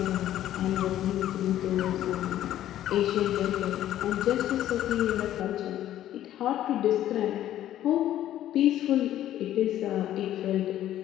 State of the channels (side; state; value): right; quieter; 12.4 dB